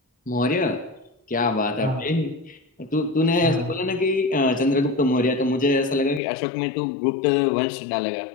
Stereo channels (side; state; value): right; drops out; at 6.2 s